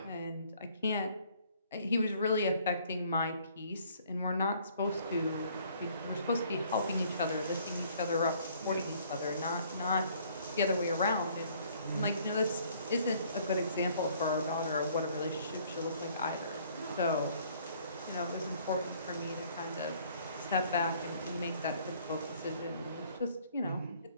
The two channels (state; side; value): inverted; both; correlation -0.60